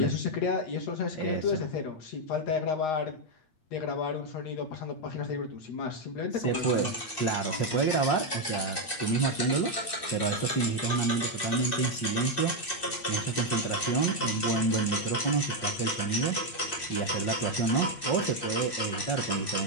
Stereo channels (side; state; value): right; late; 8.6 ms